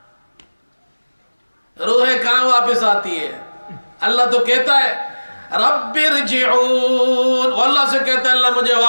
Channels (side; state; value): both; inverted; correlation -1.00